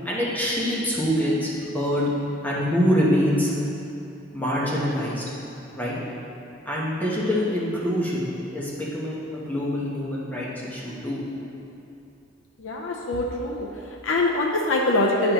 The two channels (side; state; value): both; normal; correlation 0.45